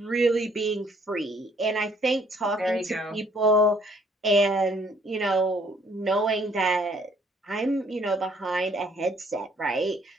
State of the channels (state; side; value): normal; both; correlation 0.63